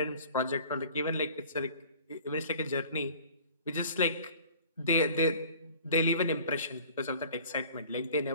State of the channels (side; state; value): both; inverted; correlation -0.47